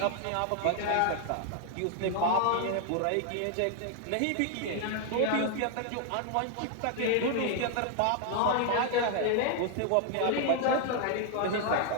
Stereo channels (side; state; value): both; different; correlation 0.00